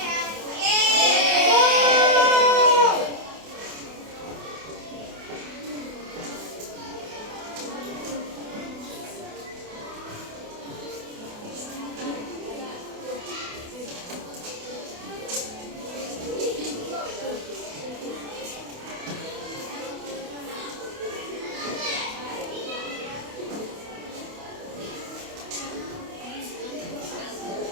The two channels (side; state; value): left; late; 28 ms